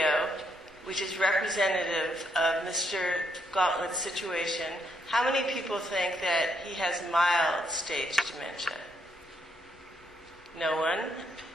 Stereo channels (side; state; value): both; normal; correlation 0.76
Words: which is representative of Mr. Gauntlet's situation, how many people think that he has mild stage dementia? No one?